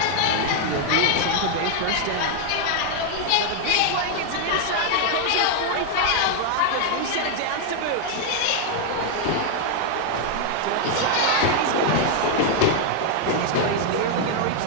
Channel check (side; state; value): both; different; correlation 0.00